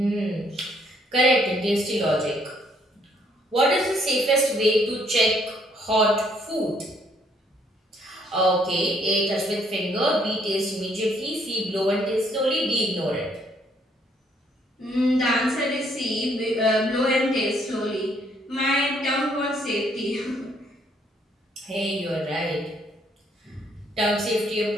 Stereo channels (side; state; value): both; normal; correlation 0.67